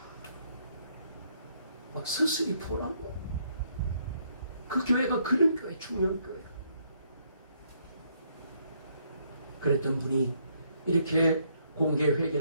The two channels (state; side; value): inverted; both; correlation -0.71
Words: 막 서슬이 보라고. 그 교회가 그런 교회, 충령교회가. 그랬던 분이 이렇게 공개